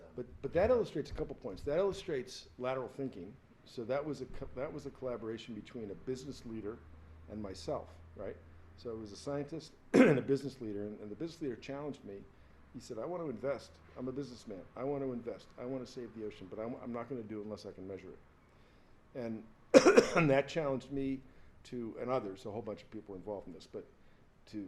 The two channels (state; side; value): identical; both; correlation 1.00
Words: which that is illustrates a couple points. That illustrates lateral thinking. So that was a collaboration between a business leader and myself, right? So it was a scientist and a business leader, and the business leader challenged me. He said, "I want to invest. I'm a businessman. I want to invest. I want to save the ocean, but I'm not going to do it unless I can measure it." And, and that challenged me and others, a whole bunch of people involved in this, but